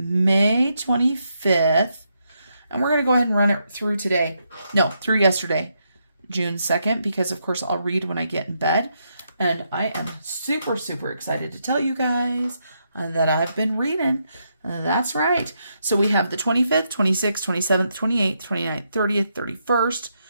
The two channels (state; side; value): inverted; both; correlation -0.80